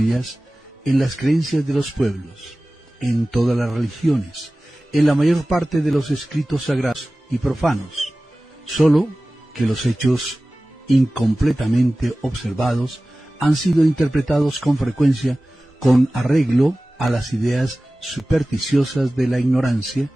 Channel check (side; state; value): both; normal; correlation 0.97